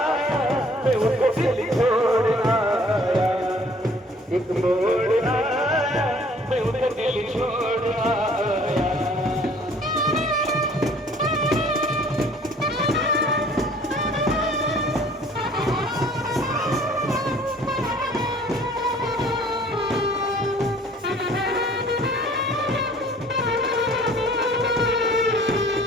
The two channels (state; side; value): normal; both; correlation 0.54